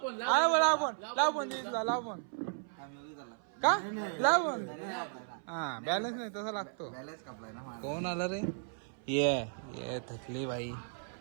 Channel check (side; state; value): left; silent; 54 dB below the other